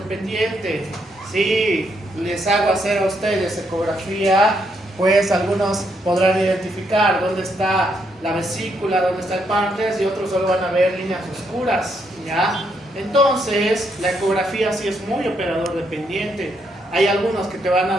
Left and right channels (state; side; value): normal; both; correlation 0.76